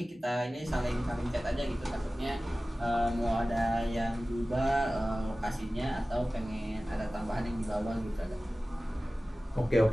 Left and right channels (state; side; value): normal; both; correlation 0.97